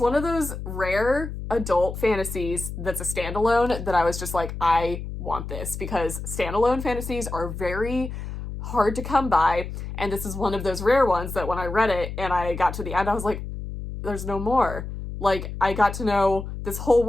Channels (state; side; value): noise; left; hum, 8 dB below the sound